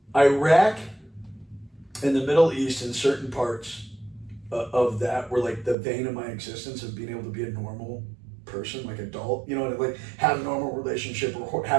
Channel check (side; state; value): left; drops out; at 5.8 s